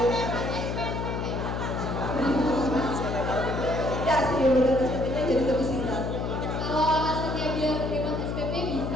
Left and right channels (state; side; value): noise; left; hum, 2 dB below the sound